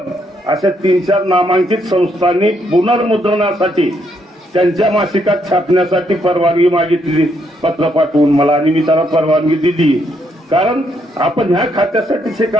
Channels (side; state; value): both; normal; correlation 0.74